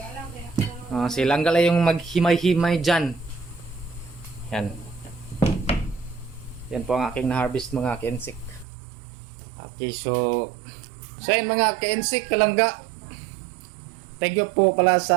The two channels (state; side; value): drops out; left; at 8.7 s